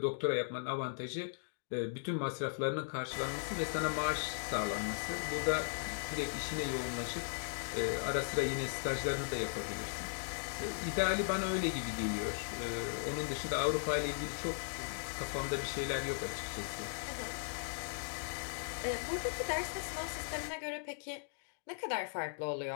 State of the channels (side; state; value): right; silent; digital silence